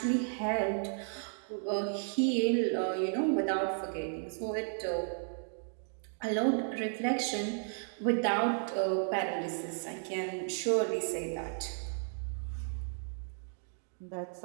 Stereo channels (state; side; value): silent; left; digital silence